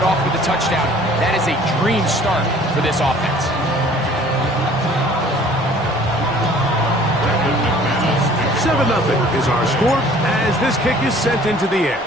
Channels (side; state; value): both; normal; correlation 0.52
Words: off with a touchdown, that is a dream start for this offense. $7-0 is our score as this kick is sent into the air.